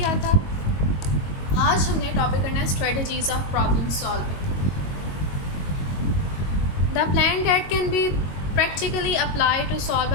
था। आज हमने टॉपिक करना है strategies of problem solving. The plan that can be practically apply to solve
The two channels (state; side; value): late; right; 22 ms